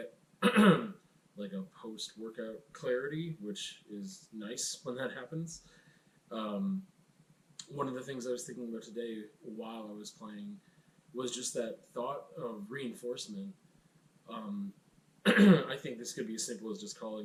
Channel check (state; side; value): identical; both; correlation 1.00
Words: like a post workout clarity, which is nice when that happens. Um, One of the things I was thinking about today while I was playing was just that thought of reinforcement. Um, I think this could be as simple as just calling